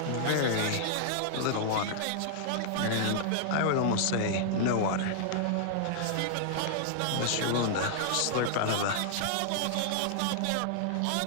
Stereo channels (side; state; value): both; different; correlation -0.01